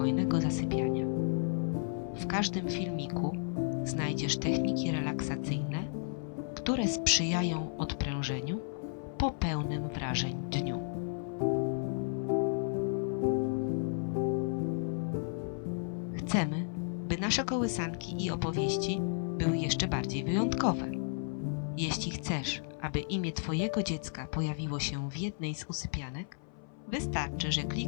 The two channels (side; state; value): right; silent; 56 dB below the other